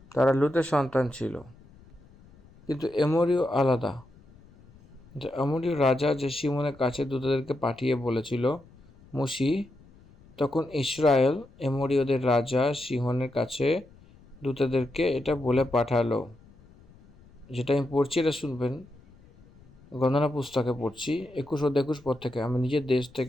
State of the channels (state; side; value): noise; left; rumble, 25 dB below the sound